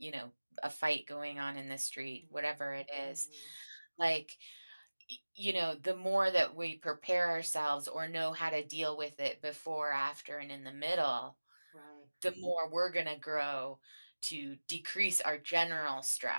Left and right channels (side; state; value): both; inverted; correlation -1.00